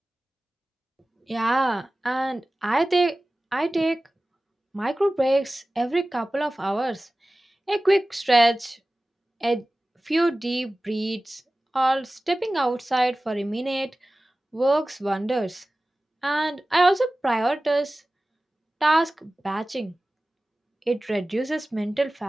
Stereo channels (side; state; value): both; normal; correlation 0.97